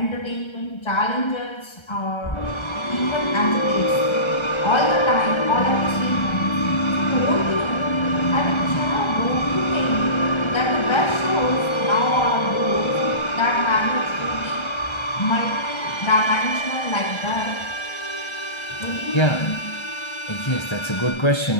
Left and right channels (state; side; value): late; right; 1.3 ms